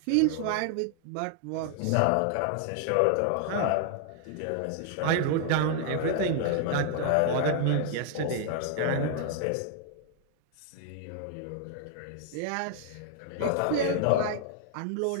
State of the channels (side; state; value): both; different; correlation 0.00